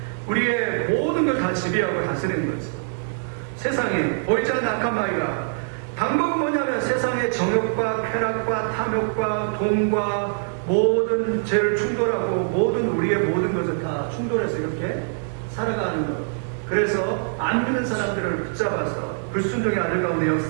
우리의 모든 걸 다 지배하고 다스리는 거죠. 세상에 보이지 않는 악한 마귀가 방법은 뭐냐면 세상의 정욕과 쾌락과 탐욕과 돈과 모든 죄를 충돌하고 모든 우리의 모든 것을 다 충돌해서 이렇게 살아가는 것. 그래서 안 믿는 사람들을 붙잡아서 불순종의 아들 가운데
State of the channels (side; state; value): left; silent; digital silence